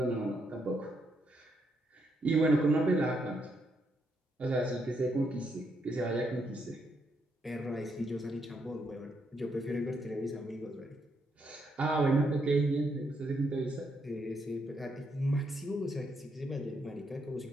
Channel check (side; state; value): both; normal; correlation 0.77